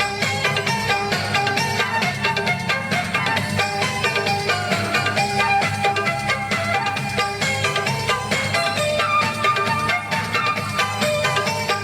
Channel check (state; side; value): identical; both; correlation 1.00